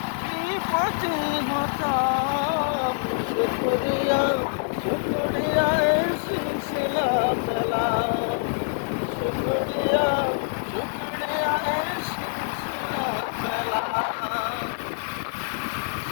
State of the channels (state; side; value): silent; right; digital silence